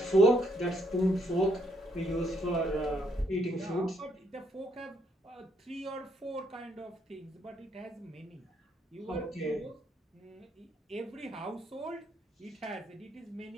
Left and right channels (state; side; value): normal; both; correlation 0.72